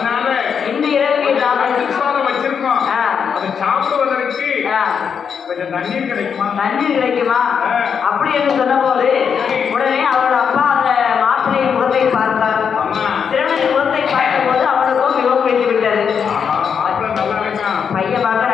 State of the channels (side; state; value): right; quieter; 6.9 dB